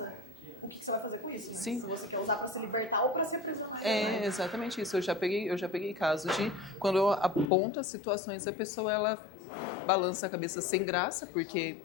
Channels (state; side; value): drops out; right; at 7.5 s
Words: o que você vai fazer com isso? Né? Sim. Se você quer usar para se libertar ou para se aprisionar. É exatamente isso. Eu já peguei caso de quando eu aponto as situações, a pessoa ela balança a cabeça sem graça, porque